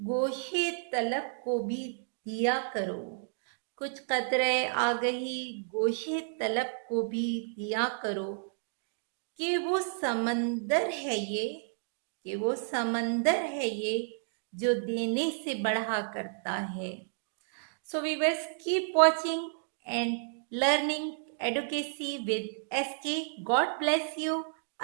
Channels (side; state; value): left; silent; digital silence